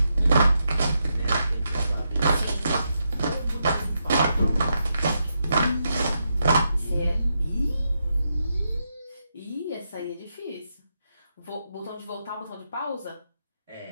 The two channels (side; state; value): both; inverted; correlation -0.84